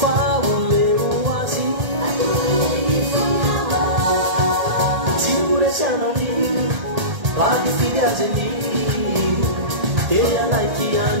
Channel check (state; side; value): late; left; 1.8 ms